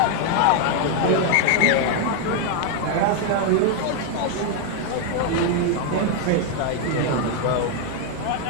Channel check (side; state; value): both; different; correlation 0.00